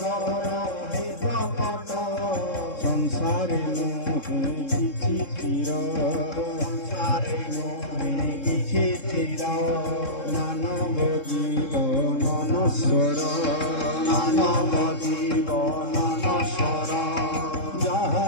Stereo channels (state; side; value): late; right; 3.7 ms